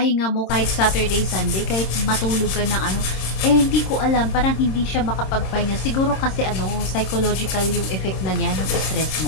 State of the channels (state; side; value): late; right; 27 ms